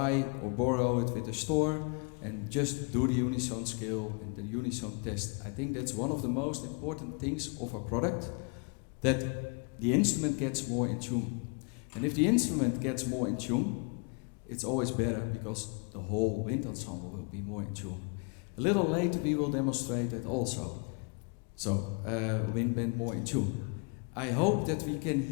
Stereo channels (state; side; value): quieter; right; 34.2 dB